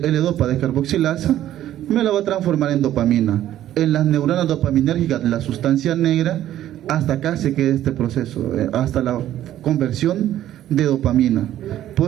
descarboxilasa, me la va a transformar en dopamina. En las neuronas dopaminérgicas, la sustancia negra, hasta acá se queda este proceso, hasta la conversión de dopamina.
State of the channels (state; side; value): quieter; left; 12.5 dB